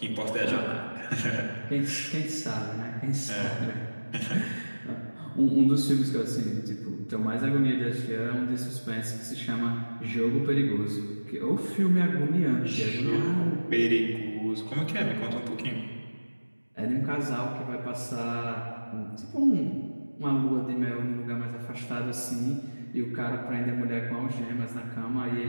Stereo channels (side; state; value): both; inverted; correlation -1.00